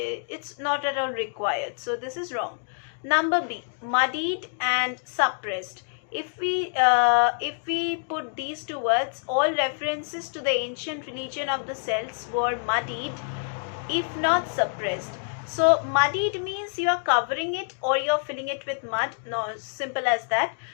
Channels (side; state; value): right; silent; 60 dB below the other